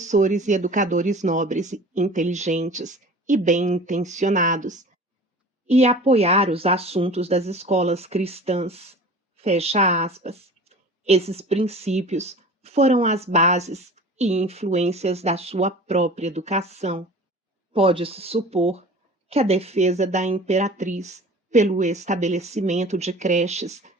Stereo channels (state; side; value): normal; both; correlation 0.41